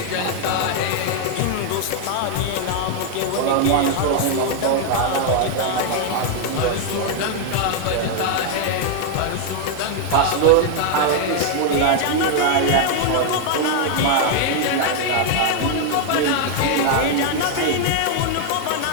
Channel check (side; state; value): both; different; correlation 0.00